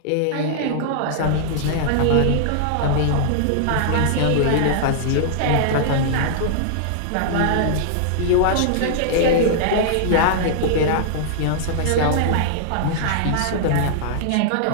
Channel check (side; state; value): both; different; correlation -0.01